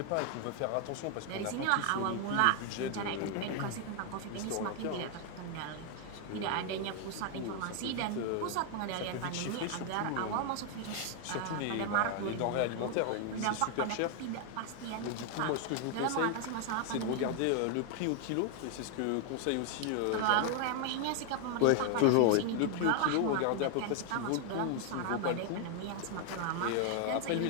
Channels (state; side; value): different; both; correlation 0.00